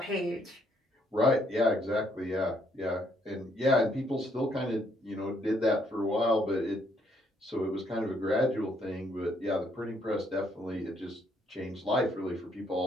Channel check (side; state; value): both; normal; correlation 0.70